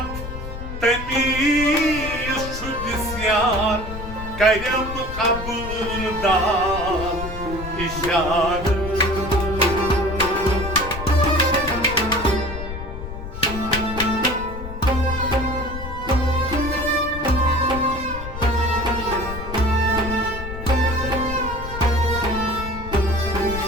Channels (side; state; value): left; noise; rumble, 9 dB below the sound